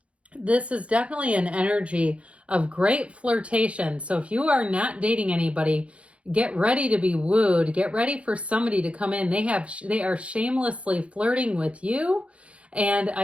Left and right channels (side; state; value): left; late; 0.062 ms